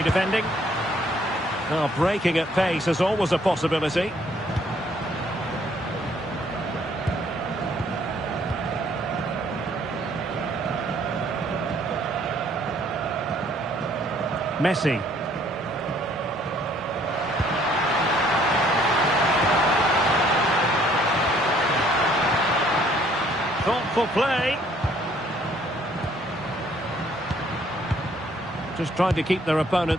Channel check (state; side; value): normal; both; correlation 0.62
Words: defending. Now breaking at pace is always a possibility. Messi. Thoughtful play. Just trying to keep their